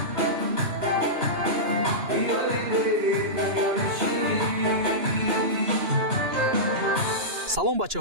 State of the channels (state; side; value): late; left; 2.9 ms